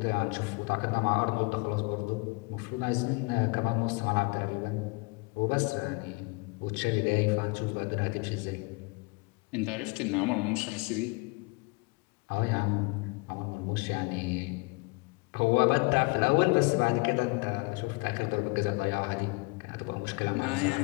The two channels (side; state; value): right; quieter; 28.8 dB